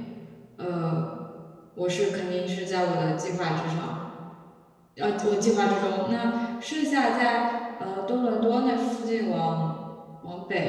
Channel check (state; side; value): identical; both; correlation 1.00